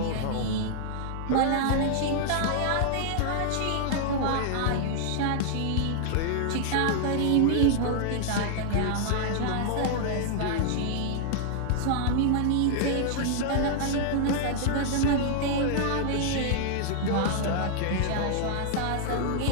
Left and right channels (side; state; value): both; different; correlation -0.01